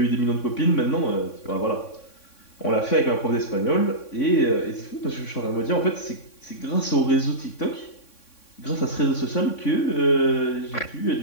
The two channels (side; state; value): right; late; 3.6 ms